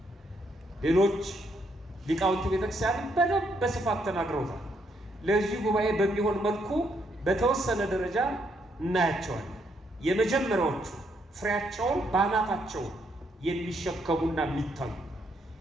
ሌሎች ሊቃውንት ቤተክርስቲያን በደንብ በስፋት ተናግረውታል። ለዚህ ጉባኤ በሚሆን መልኩ በተወሰነ ደረጃ እናያቸዋለን። የመጀመሪያዎቹ ፍሬያቸውን ባናታቸው የሚሸከሙና የሚታዩ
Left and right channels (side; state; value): both; normal; correlation 0.74